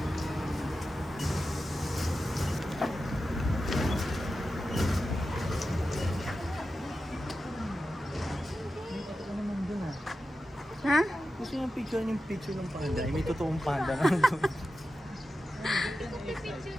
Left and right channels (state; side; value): normal; both; correlation 0.92